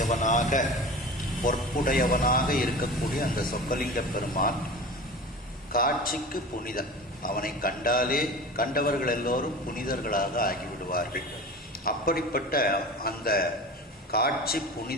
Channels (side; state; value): both; normal; correlation 0.34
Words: பொற்புடையவனாக இருக்கக்கூடிய அந்த சொக்கலிங்க பெருமான் காட்சிக்கு புனிதன். அவனை கண்டாலே கண்டவர்கள் எல்லோரும் புனிதர்களாக ஆகிவிடுவார்கள். அப்படிப்பட்ட அந்த காட்சி